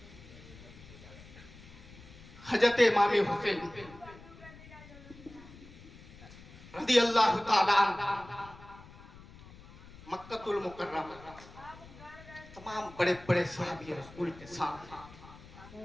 हजरत इमाम हुसैन रज़ी अल्लाह ताला मक्कतुल मुकर्रमा तमाम बड़े बड़े सहाबी रसूल के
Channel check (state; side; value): noise; left; rumble, 19 dB below the sound